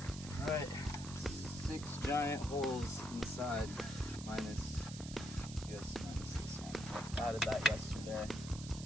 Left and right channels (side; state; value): right; noise; hiss, 12 dB below the sound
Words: All right. 6 giant holes inside, minus this one. I added that yesterday.